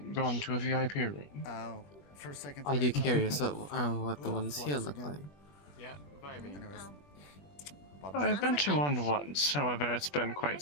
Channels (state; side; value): late; right; 20 ms